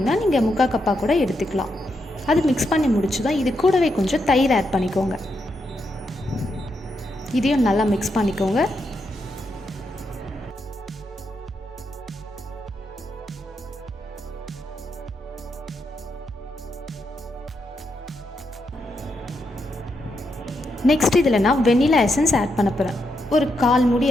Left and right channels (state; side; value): normal; both; correlation 0.82